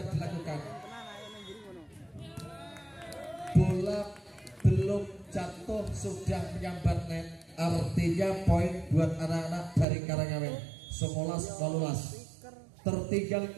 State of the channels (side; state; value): left; drops out; at 9.9 s